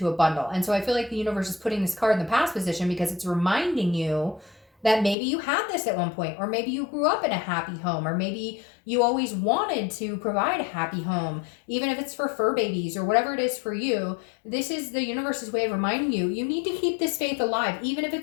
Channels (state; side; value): drops out; right; at 5.2 s